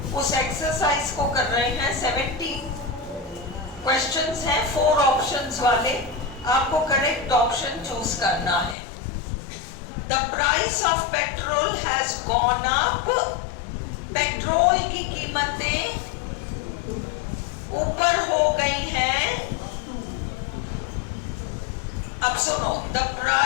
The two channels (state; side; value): drops out; right; at 8.8 s